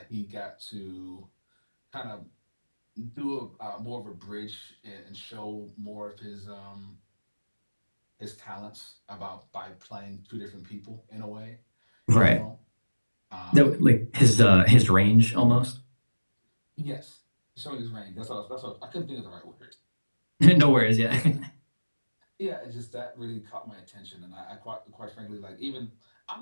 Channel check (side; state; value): both; inverted; correlation -1.00